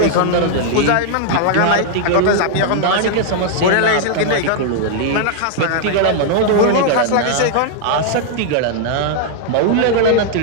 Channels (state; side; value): different; both; correlation -0.01